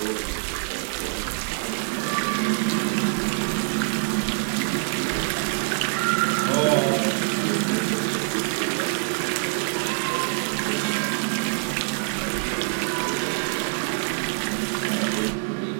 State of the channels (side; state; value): left; silent; digital silence